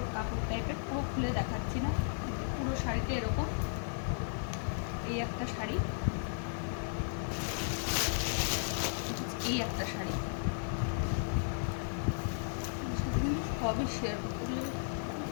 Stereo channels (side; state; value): right; silent; digital silence